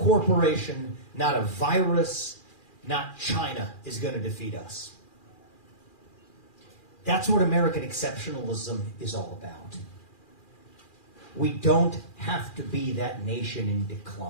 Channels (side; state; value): right; late; 2.4 ms